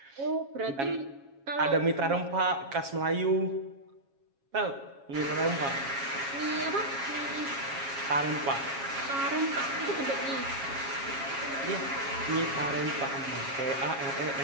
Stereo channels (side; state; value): left; late; 7.3 ms